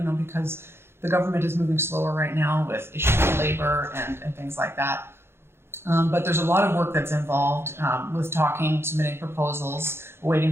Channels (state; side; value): late; left; 0.12 ms